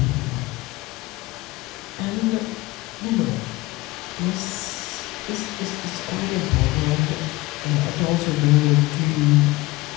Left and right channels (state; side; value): quieter; right; 20.4 dB